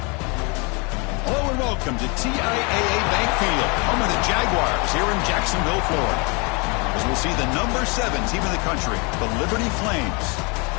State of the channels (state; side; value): quieter; right; 30.8 dB